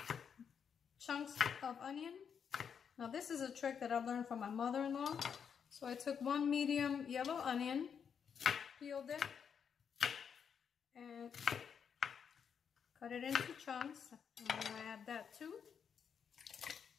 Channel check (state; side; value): quieter; right; 7.2 dB